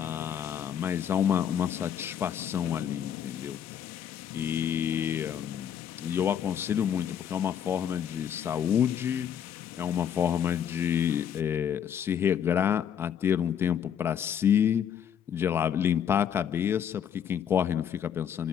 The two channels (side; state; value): right; quieter; 8.8 dB